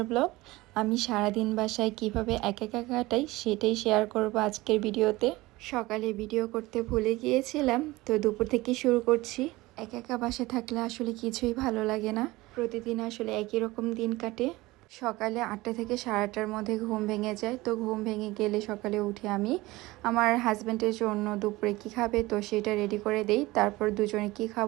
ব্লগ। আমি সারাদিন বাসায় কিভাবে একা একা কাটাই সেটাই শেয়ার করব আজকের ভিডিওতে। সকালে ভিডিও করতে ভুলে গিয়েছিলাম, তো দুপুর থেকে শুরু করছি। একা একা বাসায় থাকলে আসলে কিছুই ভালো লাগে না, প্রতিদিন আসলে একই রকম দিন কাটে। সকালে 8টা থেকে 8:30টার মধ্যে ঘুম ভেঙে যায়। তো ঘুম ভেঙে গেলে সকালে উঠে আমি আমার হাজব্যান্ডের জন্য দুপুরে কি খাবে তো সেটা রেডি করে দেই। তারপর দুজনে কি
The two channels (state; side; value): quieter; left; 20.1 dB